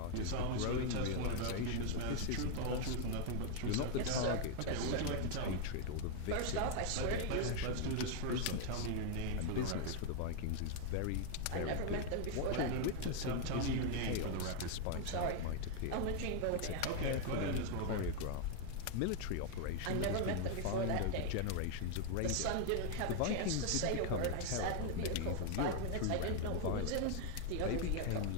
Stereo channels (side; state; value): both; different; correlation 0.00